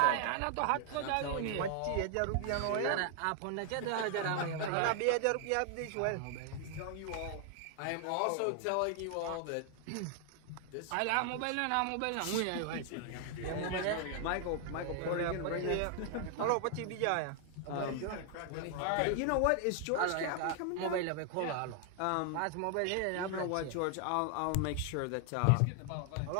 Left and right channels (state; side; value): different; both; correlation 0.00